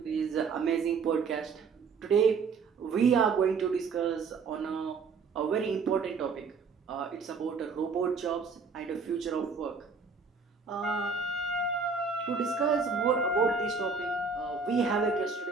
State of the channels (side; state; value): left; quieter; 5.0 dB